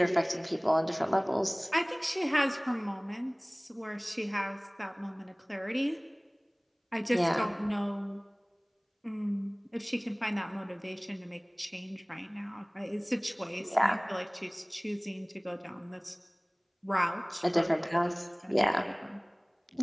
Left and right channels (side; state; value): both; identical; correlation 1.00